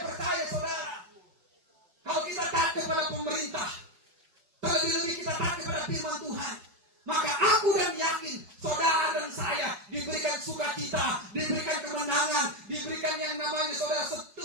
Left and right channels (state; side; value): late; left; 5.2 ms